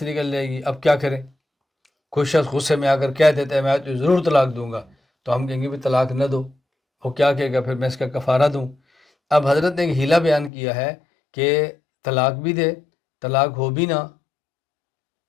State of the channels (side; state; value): right; drops out; at 10.5 s